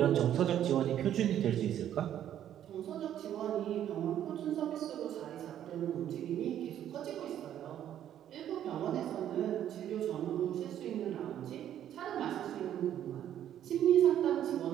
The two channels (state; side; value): quieter; left; 10.8 dB